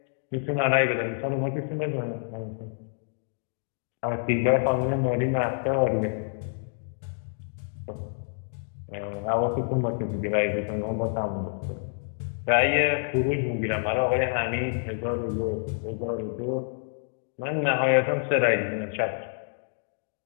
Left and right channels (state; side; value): silent; right; digital silence